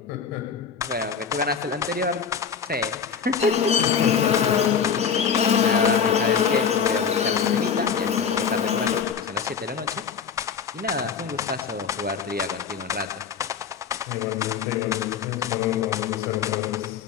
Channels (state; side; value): quieter; right; 6.7 dB